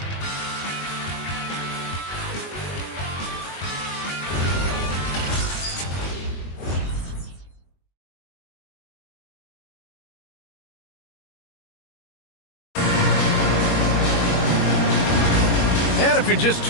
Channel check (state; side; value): late; right; 21 ms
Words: And if you're just